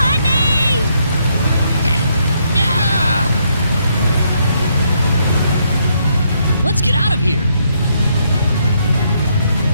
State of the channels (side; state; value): both; inverted; correlation -0.74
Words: Let's get out of here!